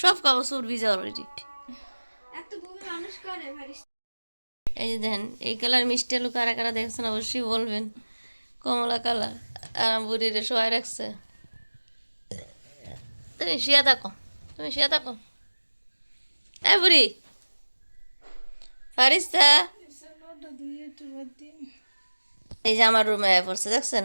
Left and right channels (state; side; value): inverted; both; correlation -1.00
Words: সব কাগজ চোর ভিজা অলরেডি। এই যে দেখেন, এই কালার মিষ্টি আলু কারা কারা দেখছেন অবশ্যই বলবেন। কমলা কালার, আর বুড়িরে শোয়াই রাখছে। তুমি শুয়ে থাকো, তুমি শুয়ে থাকো। এই বুড়ি ফারিস্তা, এই যে আমার রুমে পড়ছে দেখছেন,